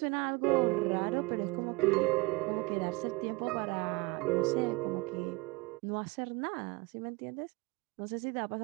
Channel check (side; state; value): left; quieter; 24.7 dB